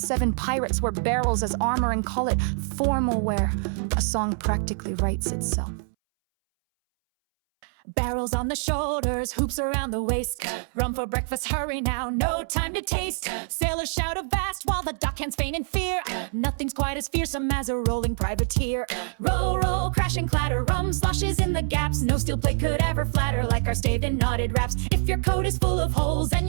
pirates wear barrels as armor and call it formal wear, a song practically writes itself. Barrels on the shoulders, hoops around the waist. Rum for breakfast, hurry now, no time to taste. Sailors shout avast while the dockhands feign in fear. Nothing's quite as fearsome as a rolling privateer. Roll, roll, crash and clatter, rum sloshes in the gaps. No steel plate could ever flatter like our staved and knotted raps. If your coat is full of holes and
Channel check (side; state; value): left; silent; 61 dB below the other